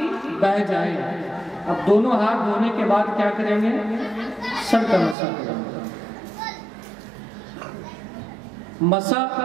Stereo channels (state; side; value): drops out; left; at 5.2 s